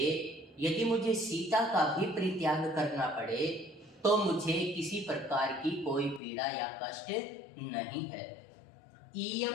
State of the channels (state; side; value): drops out; right; at 6.2 s